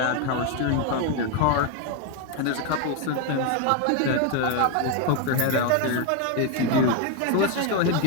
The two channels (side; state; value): both; different; correlation 0.01